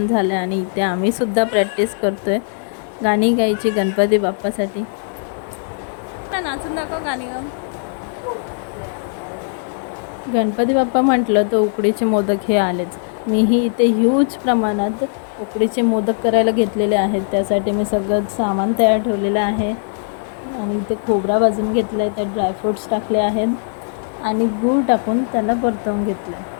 झालं आणि इथे आम्ही सुद्धा प्रॅक्टिस करतोय गाणी गायची गणपती बाप्पासाठी. नाचून दाखव गाणी गा. गणपती बाप्पा म्हटलं तर उकडीचे मोदक हे आलेच. मीही इथे ह्यूज प्रमाणात उकडीचे मोदक करायला घेतलेले आहेत. त्यासाठी मी सगळं सामान तयार ठेवलेलं आहे आणि इथे खोबरा भाजून घेतला आहे, त्यात ड्रायफ्रूट्स टाकले आहेत आणि गूळ टाकून त्याला परतवून घेतलं आहे.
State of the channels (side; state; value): right; silent; digital silence